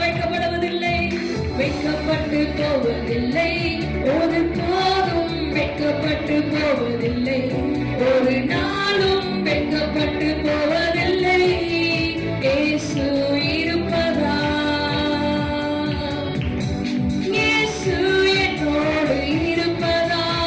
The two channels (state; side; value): identical; both; correlation 1.00